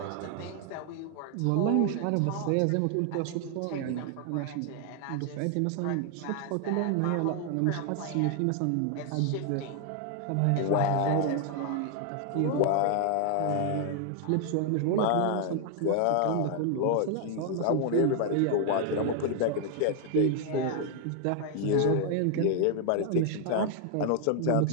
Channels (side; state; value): both; different; correlation 0.00